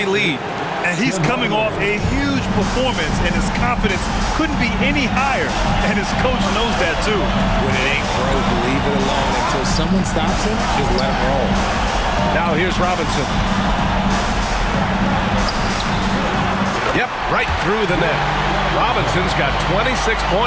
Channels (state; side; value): identical; both; correlation 1.00